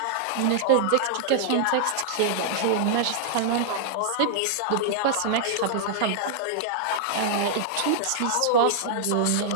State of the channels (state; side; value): different; both; correlation -0.01